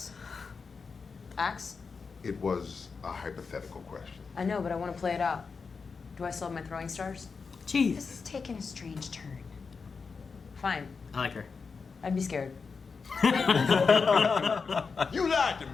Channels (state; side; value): quieter; right; 5.1 dB